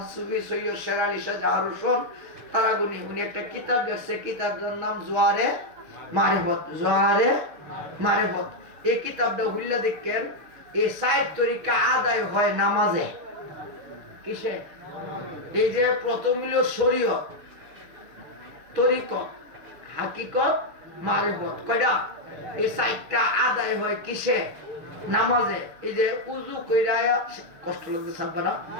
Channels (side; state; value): left; late; 6.7 ms